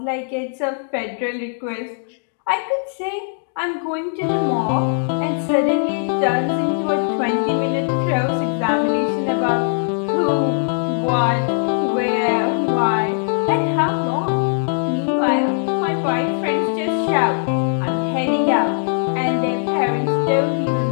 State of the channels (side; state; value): right; silent; digital silence